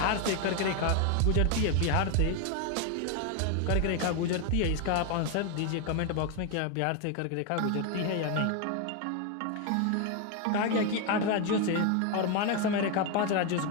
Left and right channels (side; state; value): both; different; correlation 0.01